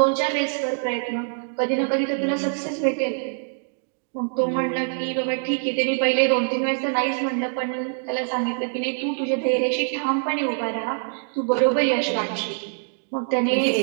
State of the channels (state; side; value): silent; left; digital silence